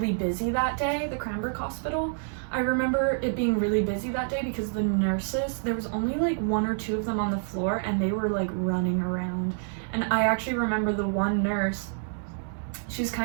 busy that day, the Cranbrook Hospital. I remember it being really busy that day because the nurses, there was only like 1 or 2 of them on the floor, and they were like running around. And I actually remember the one nurse, she was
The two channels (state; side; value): silent; left; 60 dB below the other